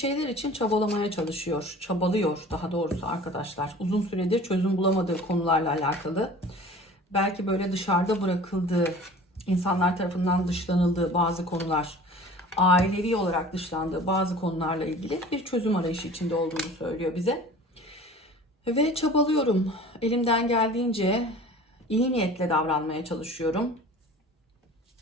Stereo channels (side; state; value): both; normal; correlation 0.43